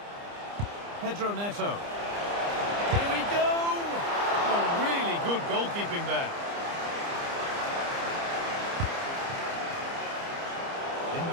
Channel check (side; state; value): left; late; 30 ms